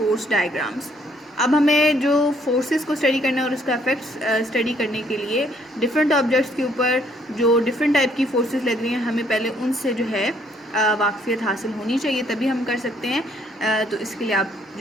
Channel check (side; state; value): both; normal; correlation 0.66